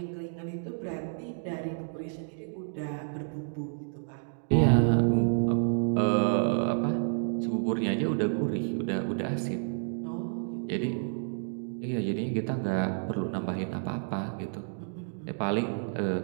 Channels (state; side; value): silent; left; digital silence